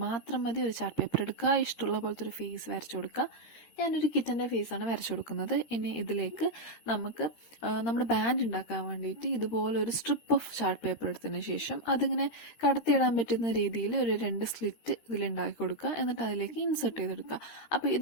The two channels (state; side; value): late; right; 13 ms